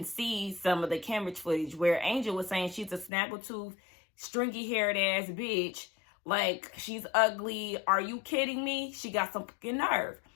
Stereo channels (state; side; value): drops out; right; at 3.1 s